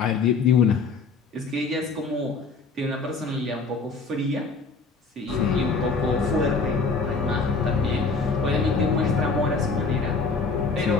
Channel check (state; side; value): quieter; right; 4.4 dB